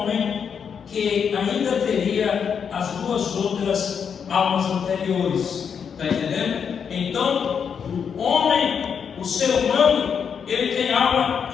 que ainda teria as 2 outras almas anteriores. Está entendendo? Então, o homem, o ser humano, ele tem alma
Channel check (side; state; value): right; quieter; 7.0 dB